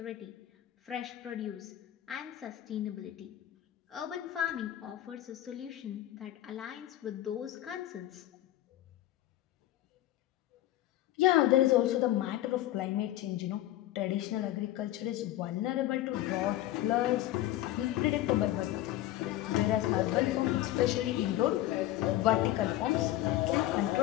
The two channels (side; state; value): right; quieter; 14.4 dB